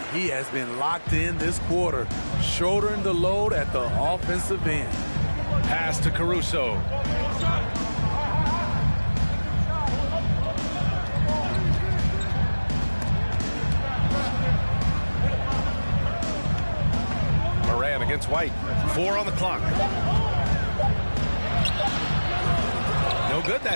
he has been locked in this quarter, shouldering the load at the offensive end. Pass to Caruso. Morant against White. 4 on the clock. No good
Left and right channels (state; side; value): inverted; both; correlation -1.00